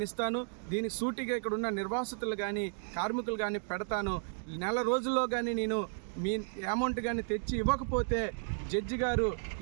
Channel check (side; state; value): left; silent; digital silence